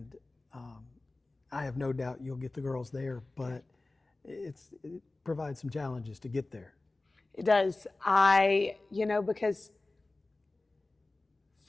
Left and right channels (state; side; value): quieter; right; 3.1 dB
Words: I have no doubt you'll get the girls there, but it provides some challenges to get there. It does. Because